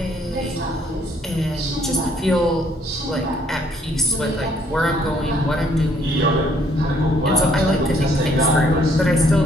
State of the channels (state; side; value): normal; both; correlation 0.66